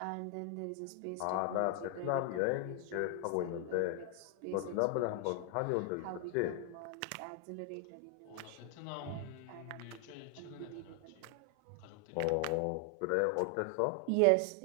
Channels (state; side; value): different; both; correlation 0.00